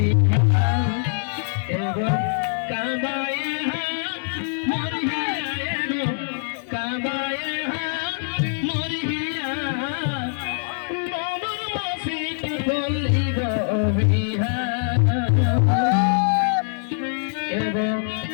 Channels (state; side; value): silent; right; digital silence